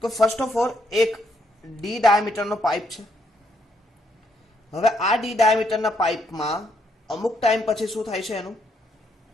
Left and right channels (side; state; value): both; normal; correlation 0.73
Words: તો ફર્સ્ટ ઓફ ઓલ એક ડી ડાયામીટરનો પાઇપ છે. હવે આ ડી ડાયામીટરના પાઇપમાં અમુક ટાઈમ પછી શું થાય છે? એનું